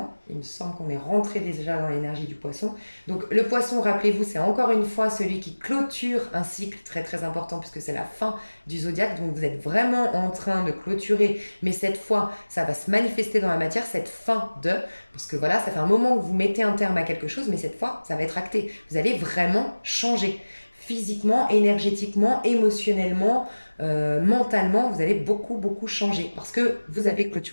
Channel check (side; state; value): both; inverted; correlation -1.00